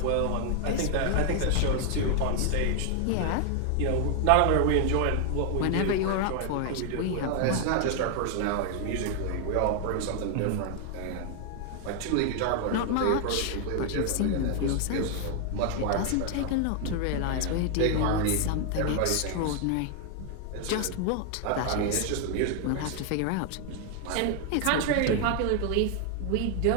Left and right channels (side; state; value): both; different; correlation 0.00